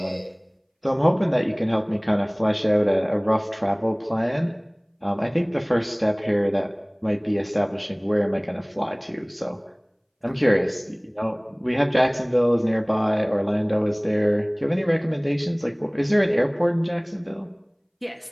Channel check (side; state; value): both; identical; correlation 1.00